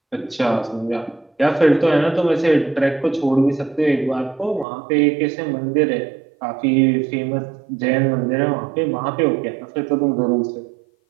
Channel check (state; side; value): drops out; left; at 4.7 s